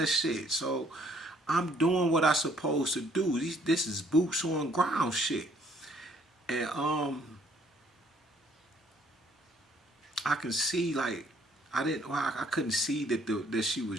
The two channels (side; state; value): both; normal; correlation 0.63